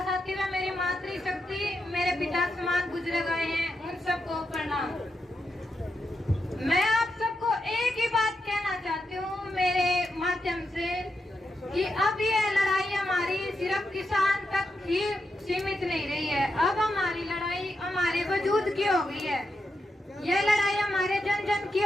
साथी व मेरी मातृशक्ति मेरे पिता समान गुजरे गए हैं, उन सबको प्रणाम। मैं आप सबको एक ही बात कहना चाहती हूँ मेरे माध्यम से कि अब ये लड़ाई हमारी सिर्फ किसान तक ही सीमित नहीं रही है, अब हमारी लड़ाई हमारे वजूद की हो गई है। ये लड़ाई हमारे जन जन की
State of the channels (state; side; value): normal; both; correlation 0.86